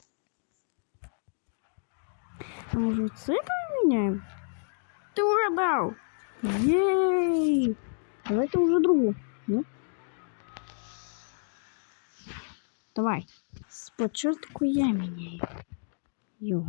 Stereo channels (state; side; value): silent; right; digital silence